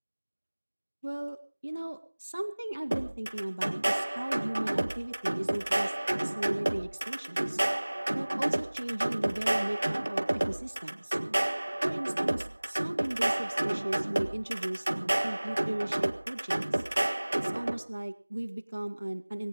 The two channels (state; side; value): inverted; both; correlation -1.00